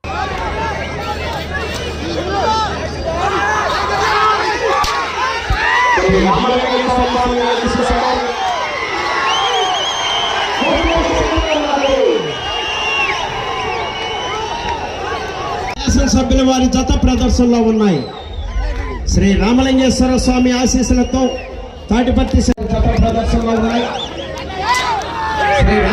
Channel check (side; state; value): both; identical; correlation 1.00